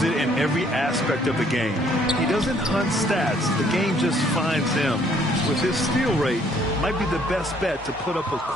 it in every aspect of the game. He doesn't hunt stats. The game just finds him. With his steal rate, might be the best bet to put up a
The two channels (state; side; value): normal; both; correlation 0.64